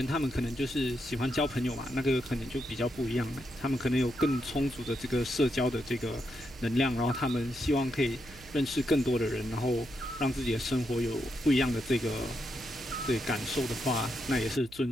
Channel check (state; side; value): noise; right; hum, 20 dB below the sound